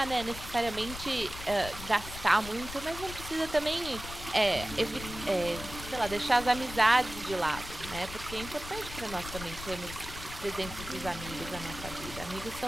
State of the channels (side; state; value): left; noise; rumble, 11 dB below the sound